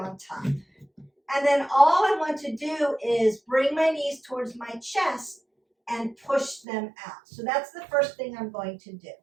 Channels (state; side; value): drops out; left; at 6.6 s